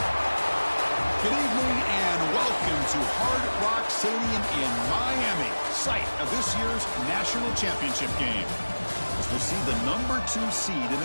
Good evening and welcome to Hard Rock Stadium in Miami, site of this year's national championship game. As we'll see the number 2 seed in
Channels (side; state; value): both; inverted; correlation -1.00